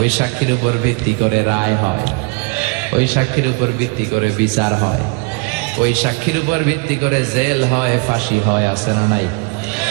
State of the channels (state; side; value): quieter; left; 28.8 dB